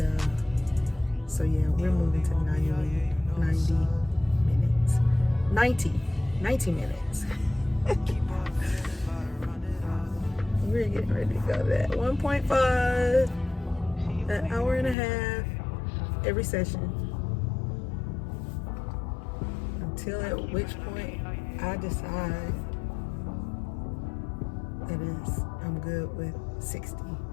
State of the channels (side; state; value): right; drops out; at 15.0 s